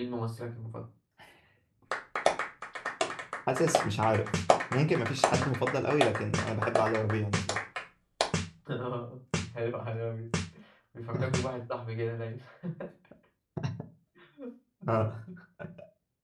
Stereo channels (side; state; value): both; identical; correlation 1.00